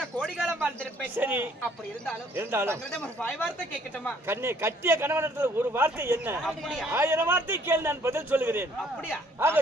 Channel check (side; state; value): both; normal; correlation 0.62